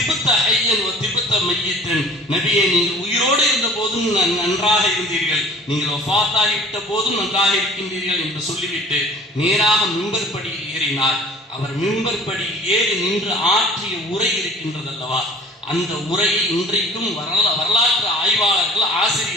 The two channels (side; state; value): both; normal; correlation 0.48